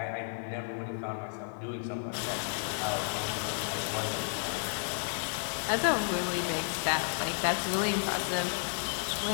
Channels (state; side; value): silent; right; digital silence